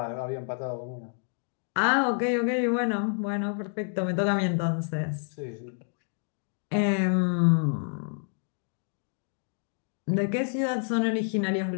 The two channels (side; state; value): right; silent; 59 dB below the other